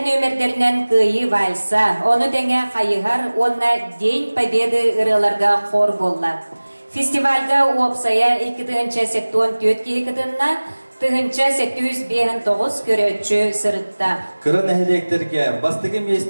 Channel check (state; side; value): inverted; both; correlation -1.00